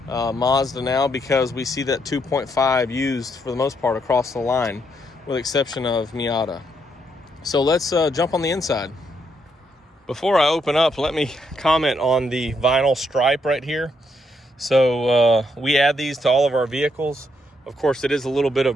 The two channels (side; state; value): both; normal; correlation 0.76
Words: Mazda now, because we see that 2.5 used for the most part across the line, with the exception of Miata. So let's jump on the inside. Before I open up, let me comment on the vinyl stripe right here. So we add these to all of our vehicles. Of course, it is a little bit